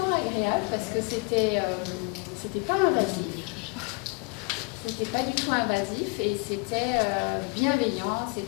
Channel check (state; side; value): quieter; right; 29.8 dB